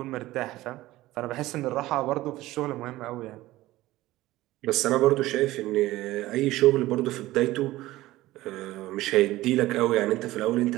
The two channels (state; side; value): quieter; left; 17.1 dB